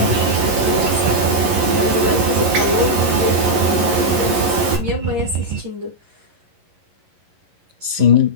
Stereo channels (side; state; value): left; late; 11 ms